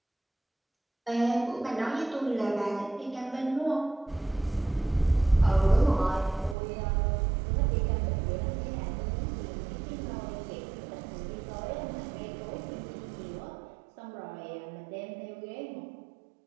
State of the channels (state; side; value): drops out; left; at 6.6 s